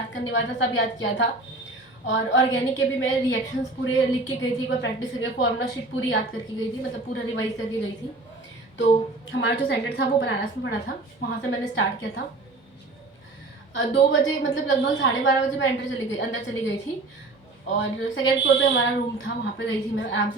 करने वाला था सब याद किया था, और ऑर्गेनिक के भी मैं रिएक्शंस पूरे लिख के गई थी, एक बार प्रैक्टिस करके फॉर्मूला शीट पूरी याद करके गई थी, मतलब पूरा रिवाइज करके गई थी। तो हमारा जो सेंटर था वो बनारस में पड़ा था, वहाँ से मैंने स्टार्ट किया था। 2 बजे मतलब लगभग 12:30 बजे मैं अंदर चली गई थी, और सेकेंड फ्लोर पे हमारा रूम था, वहाँ पे गई थी मैं, आराम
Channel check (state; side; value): quieter; left; 3.1 dB